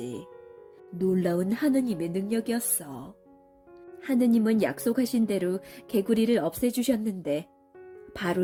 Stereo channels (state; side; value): identical; both; correlation 1.00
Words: 놀라운 하느님의 능력이었어. 하느님은 약속하신 대로 개구리를 없애주셨는데